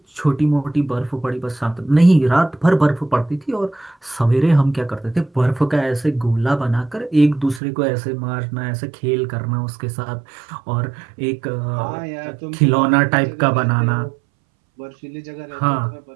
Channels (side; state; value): left; drops out; at 7.6 s